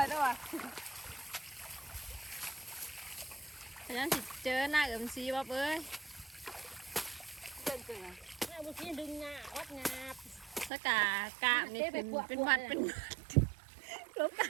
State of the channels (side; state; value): left; drops out; at 10.7 s